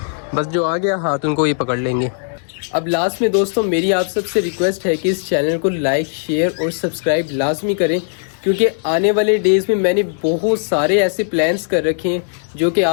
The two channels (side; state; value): right; silent; digital silence